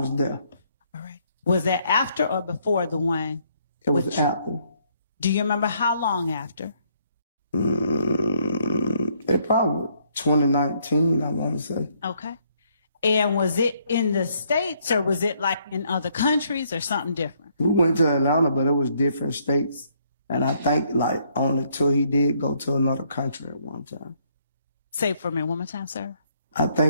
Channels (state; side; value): inverted; both; correlation -0.69